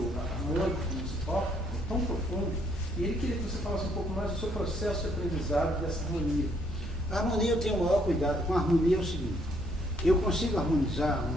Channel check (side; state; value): both; normal; correlation 0.68